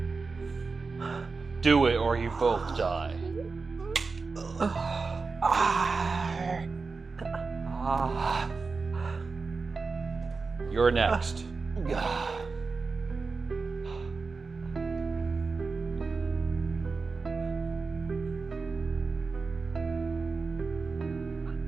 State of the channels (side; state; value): left; quieter; 4.3 dB